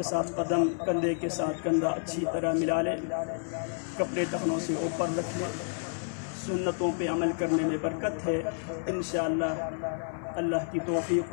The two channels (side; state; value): right; silent; 58 dB below the other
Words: साथ कदम, कंधे के साथ कंधा अच्छी तरह मिला ले, कपड़े टखनों से ऊपर रख ले। सुन्नतों पे अमल करने में बरकत है इंशाअल्लाह। अल्लाह की तौफीक